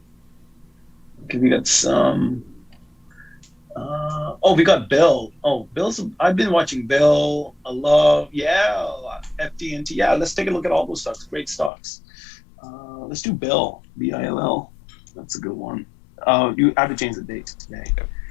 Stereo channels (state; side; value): drops out; right; at 11.7 s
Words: we got some. We got Bill. I've been watching Bill. I love, FDNT. Yeah, let's take a look at all those stocks. Great stocks. Let's do Bill. BILL. That's a good one. You have to change the date today.